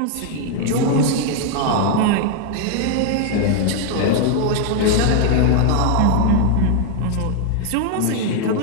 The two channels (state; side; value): different; both; correlation 0.00